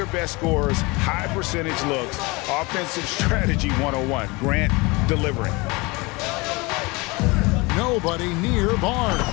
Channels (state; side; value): quieter; right; 25.1 dB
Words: best scores, high percentage looks, offensive strategy 101. Grant delivering. Nobody near Barnes.